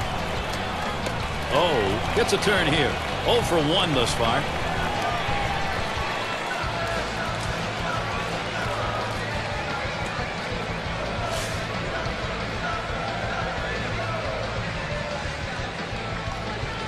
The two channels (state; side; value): identical; both; correlation 1.00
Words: Oh, gets a turn here. 0 for 1 thus far.